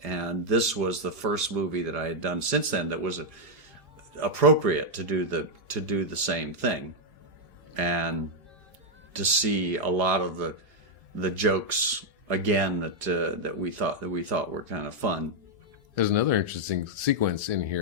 And this was the first movie that I had done since then that was appropriate to do the same thing, and to see a lot of the jokes again that we thought were kind of fun. There's another interesting sequence in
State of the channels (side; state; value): left; late; 2.5 ms